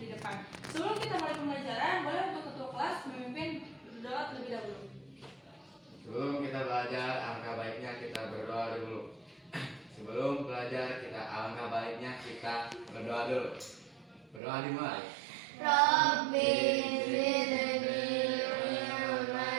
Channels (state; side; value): drops out; left; at 14.4 s